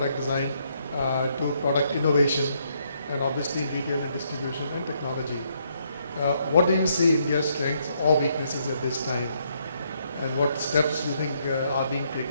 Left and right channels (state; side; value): inverted; both; correlation -0.73